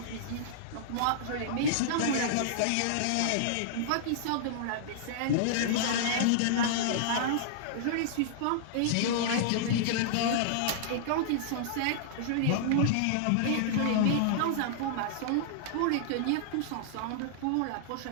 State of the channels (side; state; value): both; different; correlation -0.02